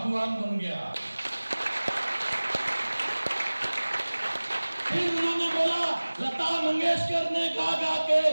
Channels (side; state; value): both; inverted; correlation -1.00